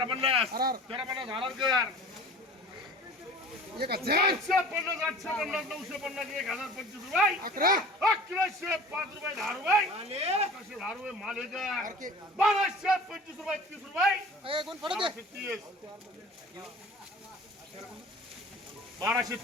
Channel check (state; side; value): normal; both; correlation 0.42